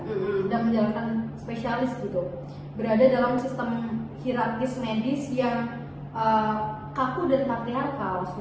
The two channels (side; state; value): both; identical; correlation 1.00